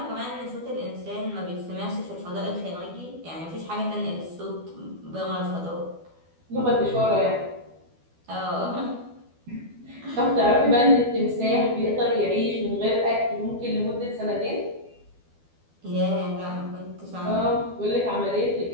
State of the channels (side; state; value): left; late; 12 ms